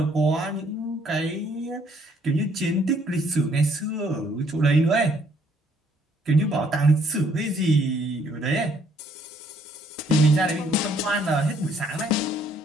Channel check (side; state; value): both; normal; correlation 0.66